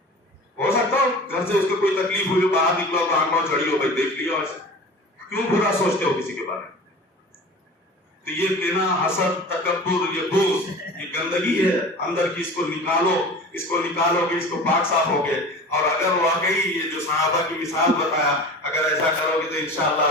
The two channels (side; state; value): both; normal; correlation 0.37